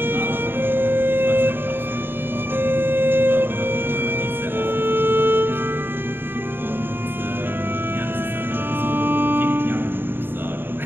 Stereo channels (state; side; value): late; left; 0.099 ms